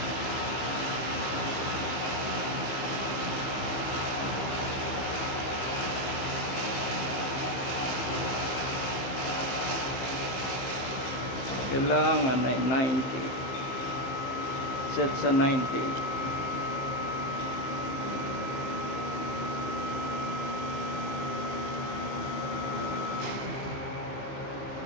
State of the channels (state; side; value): late; right; 15 ms